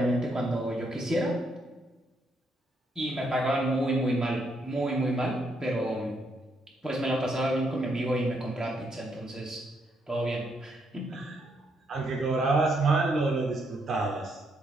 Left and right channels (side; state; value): both; normal; correlation 0.76